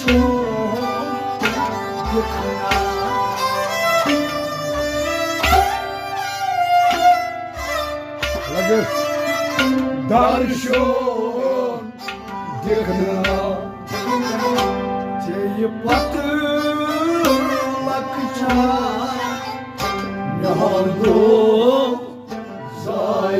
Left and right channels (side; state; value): both; identical; correlation 1.00